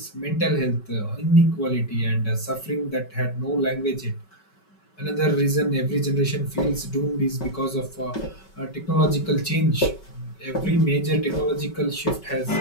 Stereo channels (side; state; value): right; late; 5.3 ms